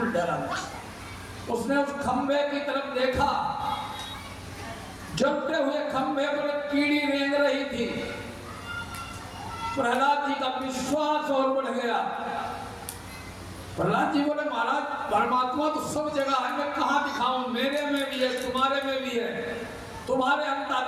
डरा नहीं। उसने उस खंभे की तरफ देखा, जलते हुए खंभे पर कीड़ी रेंग रही थी। प्रहलाद जी का विश्वास और बढ़ गया। प्रहलाद जी बोले, महाराज परमात्मा तो सब जगह है, मैं कहाँ दिखाऊं? मेरे में भी है, तुम्हारे में भी है, तुम्हारे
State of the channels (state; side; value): identical; both; correlation 1.00